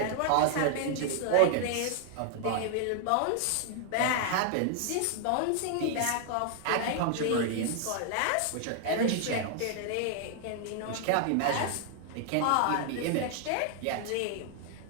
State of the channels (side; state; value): both; different; correlation 0.00